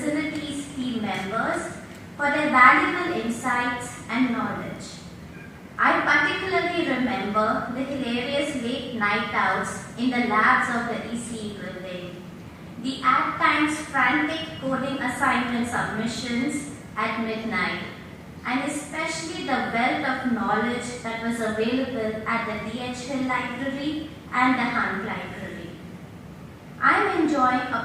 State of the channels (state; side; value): identical; both; correlation 1.00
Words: team members for their valuable insights and knowledge. I particularly remember the hilarious late night outs in the labs of the ECE building, the at times frantic coding assignment submissions at midnight, and especially the wealth of knowledge that was available at the D.H. Hill Library and the Hunt Library. I am enjoying